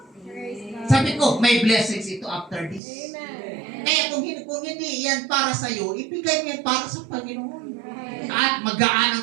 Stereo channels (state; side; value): drops out; left; at 2.8 s